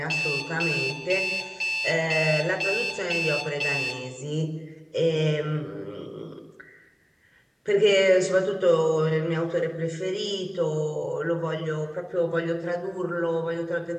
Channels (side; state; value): both; identical; correlation 1.00